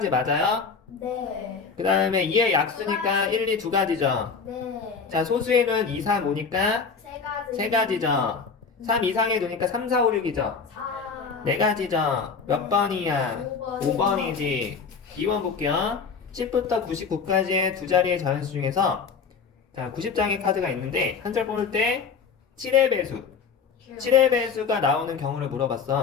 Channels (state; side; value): quieter; right; 5.5 dB